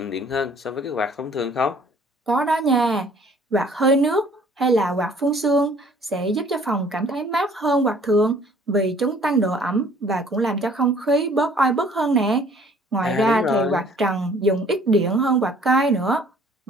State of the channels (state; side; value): normal; both; correlation 0.56